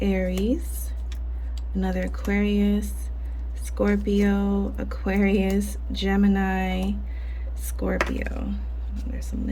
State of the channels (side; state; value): both; identical; correlation 1.00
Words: another Aquarius, Scorpio, Aquarius, Gemini, Scorpio. There's some